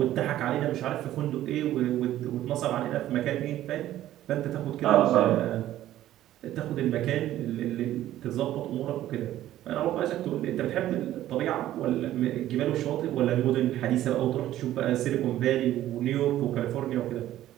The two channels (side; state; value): left; quieter; 13.4 dB